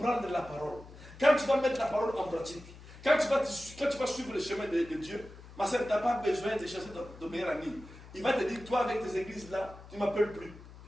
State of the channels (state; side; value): noise; left; hum, 18 dB below the sound